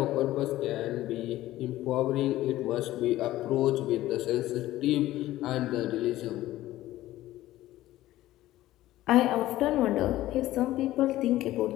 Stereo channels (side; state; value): right; quieter; 15.4 dB